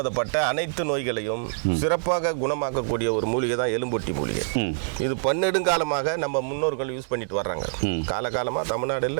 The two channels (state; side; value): silent; left; digital silence